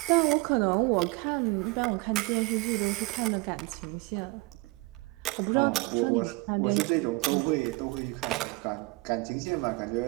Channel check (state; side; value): quieter; left; 24.3 dB